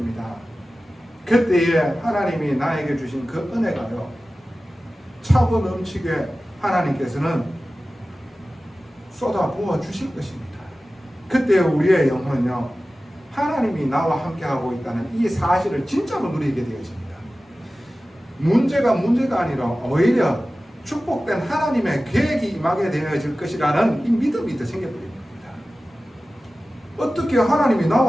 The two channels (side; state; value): both; normal; correlation 0.96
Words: 그때에 하나님이 나에게 주신 그 은혜가요, 차고 넘치게 하나님께서는 쏟아 부어 주실 것입니다. 그때 우리의 영혼은요, 하나님이 나와 함께하고 있다는 이 사실을 진짜로 누리게 되어집니다. 문제가 아니라 오히려 축복된 하나님의 계획이 임하게 되어질 것이라는 이 믿음이 더 생겨버립니다. 어떻게 하나님이